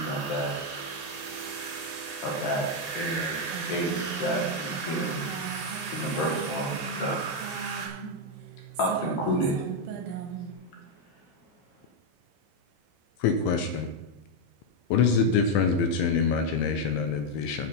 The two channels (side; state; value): right; late; 1.8 ms